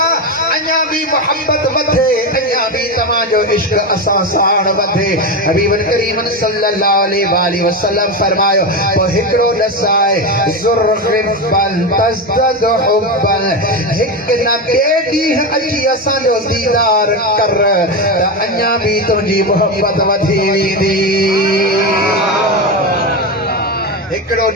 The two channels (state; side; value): normal; both; correlation 0.16